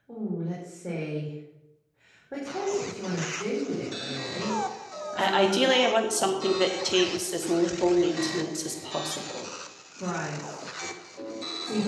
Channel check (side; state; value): both; identical; correlation 1.00